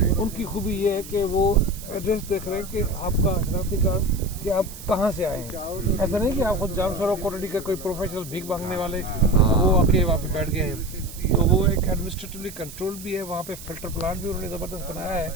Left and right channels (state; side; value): noise; right; hiss, 15 dB below the sound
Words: उनकी खूबी ये है कि वो एड्रेस देख रहे हैं कि आपका शनाख्ती कार्ड कि आप कहाँ से आए हैं। ऐसा नहीं कि आप खुद जामसर कोटड़ी का कोई प्रोफेशनल भीख मांगने वाले वो आके वहाँ पे बैठ गए हैं। तो वो एक एडमिनिस्ट्रेटिवली कंट्रोल भी है, वहाँ पे फिल्टर प्लांट भी उन्होंने ज़बरदस्त बनाया है।